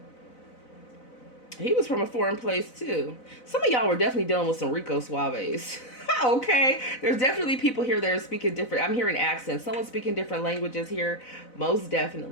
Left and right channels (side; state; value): right; late; 4.0 ms